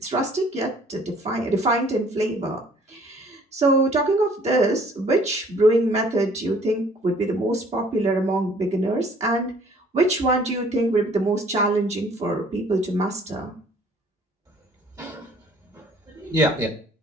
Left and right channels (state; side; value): normal; both; correlation 0.57